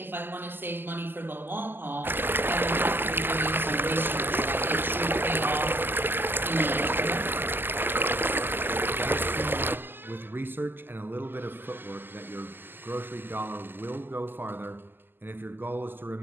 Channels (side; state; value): left; late; 0.095 ms